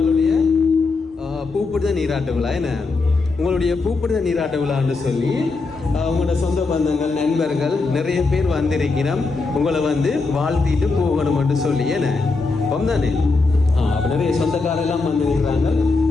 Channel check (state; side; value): quieter; right; 3.9 dB